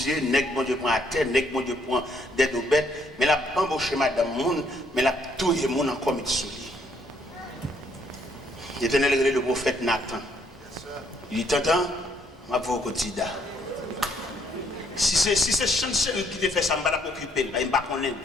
nèg bon Dieu prend à terre, nèg bon Dieu prend des deux bêtes, mais la bambouché madame monde, mais la touille monde encore met sous lui. L'Éternel le prophète Nathan. Il dit t'entends, ma voix au quotidien. Si c'est chanceux qui te fait ça, je ne vais pas m'occuper, je ne vais pas connaître.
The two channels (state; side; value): normal; both; correlation 0.69